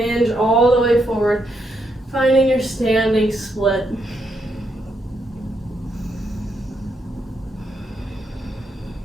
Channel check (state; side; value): normal; both; correlation 0.79